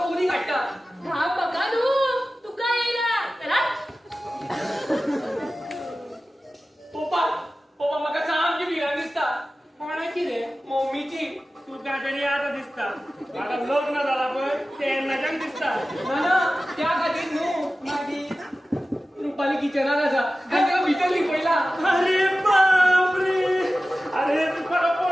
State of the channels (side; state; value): both; normal; correlation 0.95